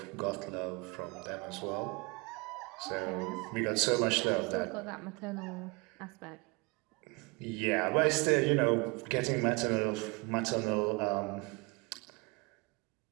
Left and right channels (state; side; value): quieter; left; 28.0 dB